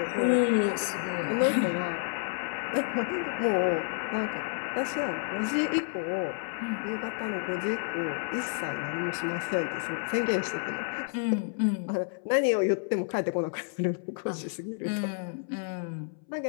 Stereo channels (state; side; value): silent; right; 58 dB below the other